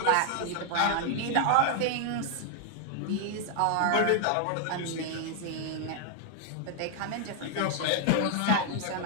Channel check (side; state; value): both; different; correlation 0.00